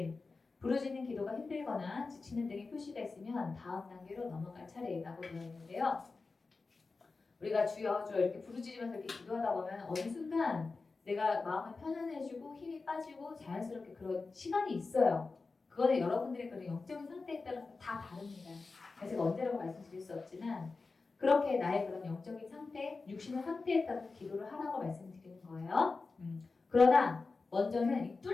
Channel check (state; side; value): quieter; right; 4.0 dB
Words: 부르짖는 기도가 힘들거나 지치는 등의 표시가 있으면 다음 단계로 넘어갈 차례라고 되어 있는데요. 우리가 주여 주여 이렇게 부르짖으면서 이렇게 기도하다 보면 어느 순간 내가 마음을 편안해지고 힘이 빠지고 자연스럽게 그런 시간이 있어요. 그거는 여러분들의 그런 영적인 상태에 따라서 다 다릅니다. 그래서 제가 언제라고 말씀드릴 수 없지만 그렇게 나의 그런 영적인 상태, 육신의 상태에 따라서 기도를 하라고 말씀드리는 거예요. 그러나 먼저는 이